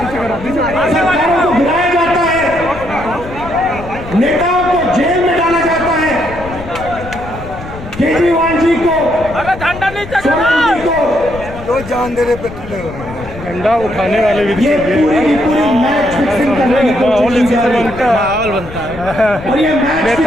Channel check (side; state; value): left; noise; rumble, 13 dB below the sound